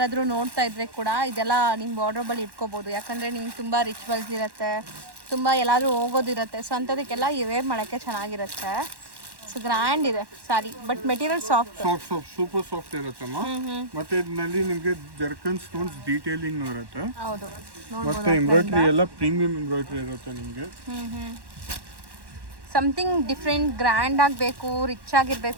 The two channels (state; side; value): late; left; 1.1 ms